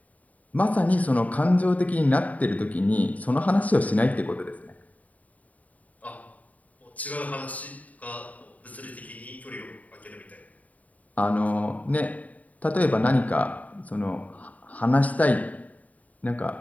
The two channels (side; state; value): right; late; 0.071 ms